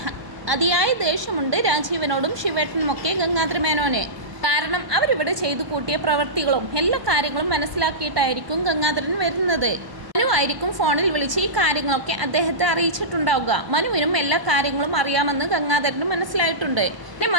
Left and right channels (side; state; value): left; late; 1.1 ms